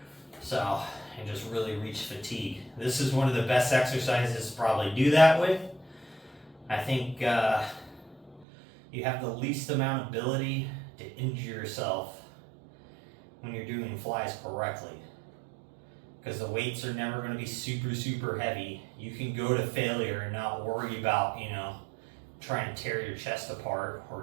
So, and just really reach fatigue. This is one of the best exercises to probably do that with. I think you have the least amount of ability to injure yourself when you're doing flies correctly, because the weights are never going to be super heavy. You can go to failure and not worry about, you know, trying to tear your chest apart or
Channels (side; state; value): left; drops out; at 8.5 s